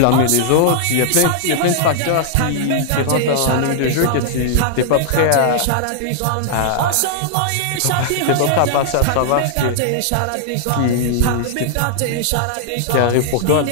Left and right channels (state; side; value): different; both; correlation -0.01